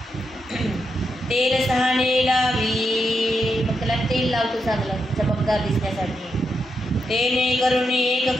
तेल सहाणे लावी, मग त्याला तेल लावतो चांगलं चमकदार दिसण्यासाठी. तेने करुणी एक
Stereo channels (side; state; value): both; normal; correlation 0.84